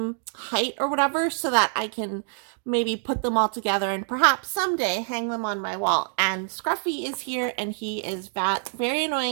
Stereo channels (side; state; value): left; silent; digital silence